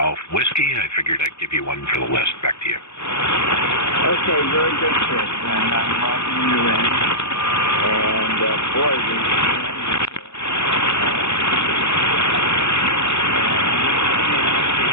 Whiskey. I figured I'd give you one for the list. Back to you. Okay, very good, Chris. And I'm logging you in. And boy,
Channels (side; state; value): right; late; 0.81 ms